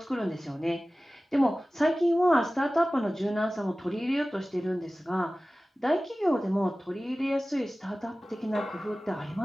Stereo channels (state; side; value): normal; both; correlation 0.97